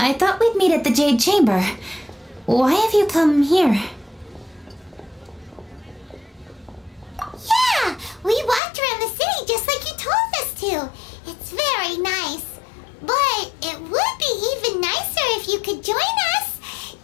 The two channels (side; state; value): right; drops out; at 8.6 s